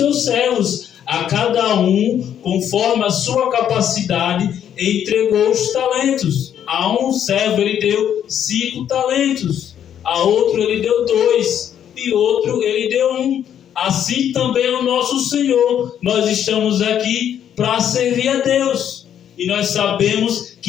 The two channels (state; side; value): quieter; right; 9.6 dB